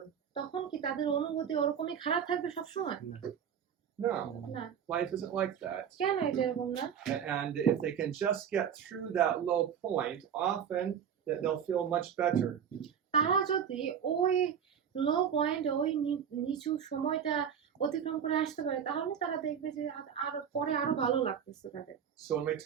তখন কি তাদের অনুভূতি ওরকমই খারাপ থাকবে সবসময়? No. না। Life isn't like that. কেন এটা এরকম না? And if they can just get through that low point, often they'll feel much better. তারা যদি ওই লো পয়েন্ট, ওই নিচু সময়টা অতিক্রম করে আসতে পারে তাহলে তারা দেখবে যে আরো ভালো লাগতেছে তাদের। So when we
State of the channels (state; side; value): quieter; left; 8.2 dB